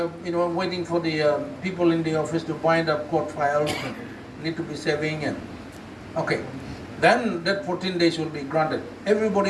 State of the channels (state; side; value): identical; both; correlation 1.00